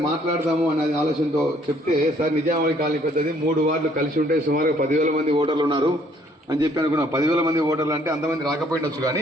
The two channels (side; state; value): both; normal; correlation 0.63